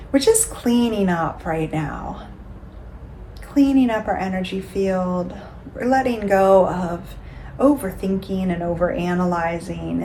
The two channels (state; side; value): identical; both; correlation 1.00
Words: We're just cleaning up right now. Cleaning up our energy field. We're letting go of overthinking and overanalyzing